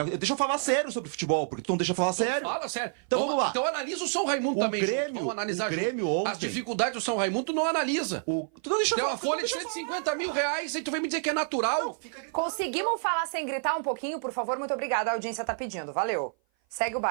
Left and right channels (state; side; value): silent; left; 55 dB below the other